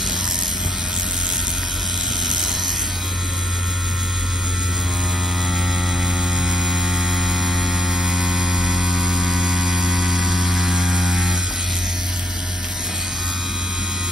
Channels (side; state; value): both; normal; correlation 0.70